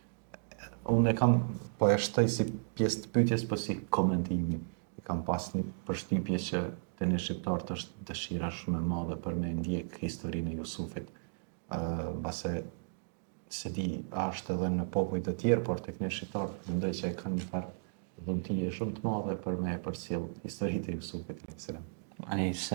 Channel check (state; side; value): silent; left; digital silence